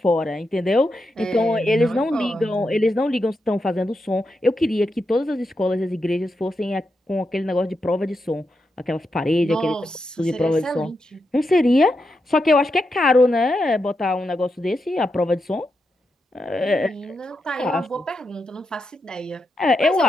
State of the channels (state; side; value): normal; both; correlation 0.86